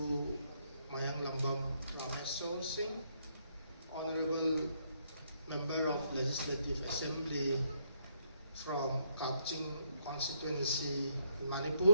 Mayang Lambam Ramesh Singh, Honorable Member of Legislative Assembly from Kaching constituency in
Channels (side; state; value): both; inverted; correlation -0.73